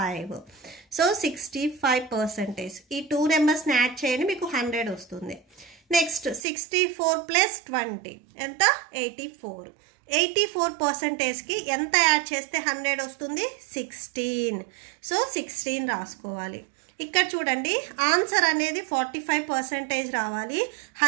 సో 65%. ఈ 2 నెంబర్స్ ని యాడ్ చేయండి, మీకు 100 వస్తుంది. నెక్స్ట్ 64 ప్లస్ 20 ఎంత? 84. 84% కి ఎంత యాడ్ చేస్తే 100 వస్తుంది? 16. సో 16 రాసుకోవాలి. ఇక్కడ చూడండి, ఆన్సర్ అనేది 45% రావాలి.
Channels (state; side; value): drops out; left; at 6.4 s